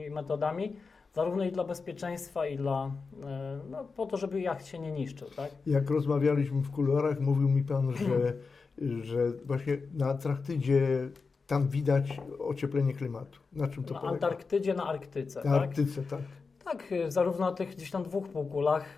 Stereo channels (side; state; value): right; quieter; 4.6 dB